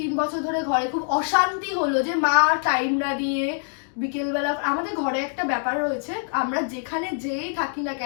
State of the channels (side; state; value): right; silent; 62 dB below the other